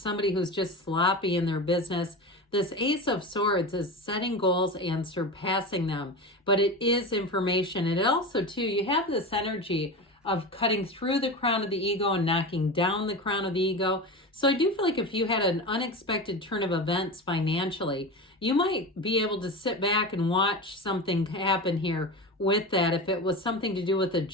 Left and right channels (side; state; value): both; normal; correlation 0.26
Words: who's just sloppy in their business. This Ace of Swords is setting goals and surpassing them, but it is information. And it also, too, you have this energy of cutting through the crown of the ego and knocking down the crown of the ego. So I do feel like if you had an unexpected turn of events financially, you might be able to sit back and watch something happen here with that. If it was something to do with a